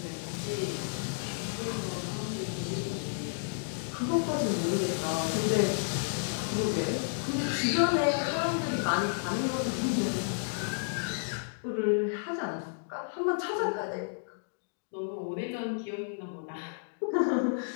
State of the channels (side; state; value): right; silent; digital silence